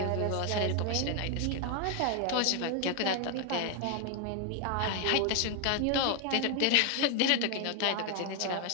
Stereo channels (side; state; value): both; different; correlation 0.01